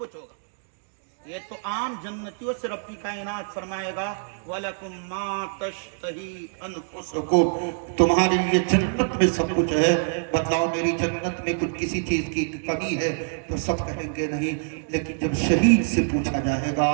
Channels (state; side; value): silent; left; digital silence